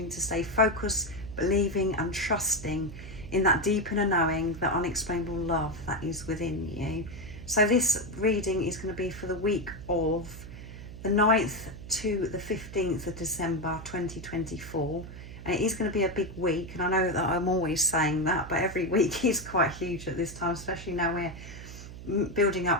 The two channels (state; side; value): noise; right; hum, 13 dB below the sound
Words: to stay focused, believing and trusting in that deep inner knowing, that unexplainable love that is within you. So this reading is going to be for the week of the 9th to the 15th of December 2024. And it is going to be a big week, and I know that I'm always saying that, but every week is quite huge at this time, especially now we're building